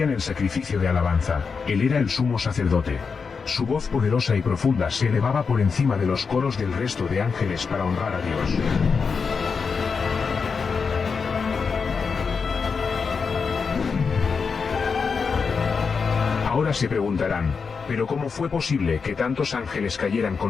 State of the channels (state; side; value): quieter; right; 5.4 dB